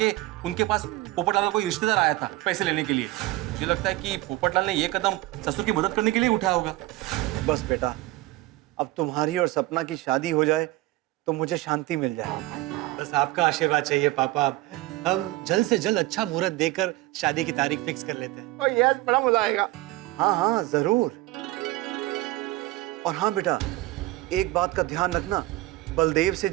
उनके पास पोपटलाल का कोई रिश्तेदार आया था पैसे लेने के लिए। मुझे लगता है कि पोपटलाल ने ये कदम ससुर की मदद करने के लिए उठाया होगा। बस बेटा, अब तुम्हारी और सपना की शादी हो जाए तो मुझे शांति मिल जाए। बस आपका आशीर्वाद चाहिए पापा। हम जल्द से जल्द अच्छा मुहूर्त देकर शादी की तारीख फिक्स कर लेते हैं। ओ यस, बड़ा मजा आएगा। हाँ हाँ जरूर। और हाँ बेटा, एक बात का ध्यान रखना, बलदेव से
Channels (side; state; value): left; quieter; 18.1 dB